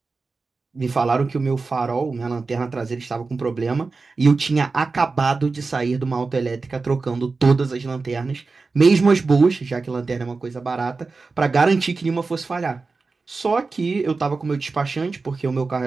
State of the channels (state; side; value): quieter; left; 4.1 dB